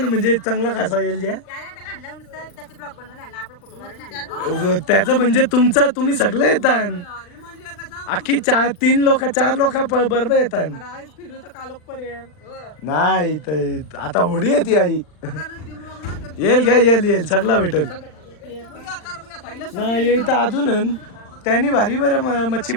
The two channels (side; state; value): right; late; 39 ms